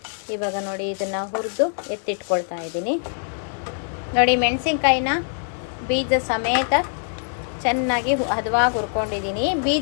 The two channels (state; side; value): silent; right; 63 dB below the other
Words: ಇವಾಗ ನೋಡಿ, ಇದನ್ನು ಹುರಿದು ಎತ್ತಿಟ್ಕೊಳ್ತಾ ಇದ್ದೀನಿ ನೋಡಿ. ಮೆಣಸಿನ್ಕಾಯಿನ ಬೀಜ ಸಮೇತ ಚೆನ್ನಾಗಿ ಹದವಾಗಿ ಹುರ್ಕೊಂಡಿದ್ದೀನಿ.